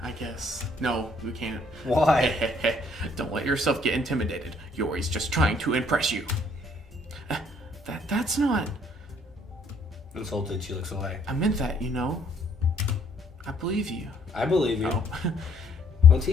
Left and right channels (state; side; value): normal; both; correlation 0.64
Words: I guess. No, we can't. Why? Don't let yourself get intimidated. Yuri's just trying to impress you. That's not... Insulted, she looks away. I meant that, you know. I believe you. I believe you. Oh. Well,